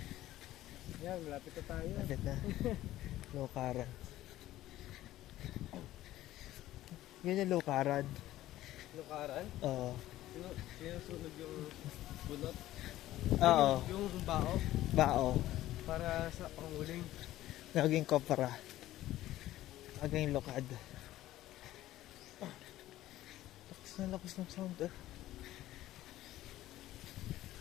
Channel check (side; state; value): right; quieter; 14.8 dB